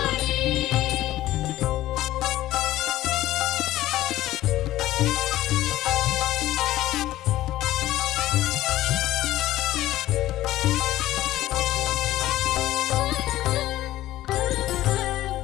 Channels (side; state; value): right; quieter; 15.1 dB